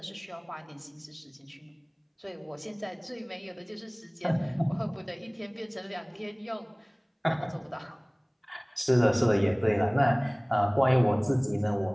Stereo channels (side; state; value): both; identical; correlation 1.00